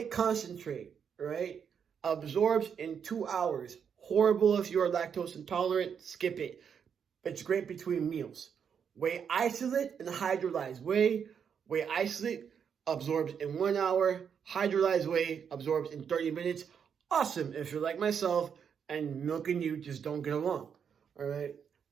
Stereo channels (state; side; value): quieter; left; 7.3 dB